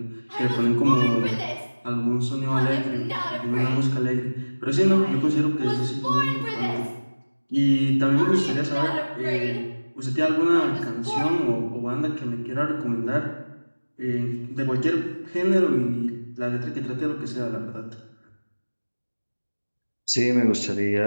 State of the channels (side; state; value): both; inverted; correlation -1.00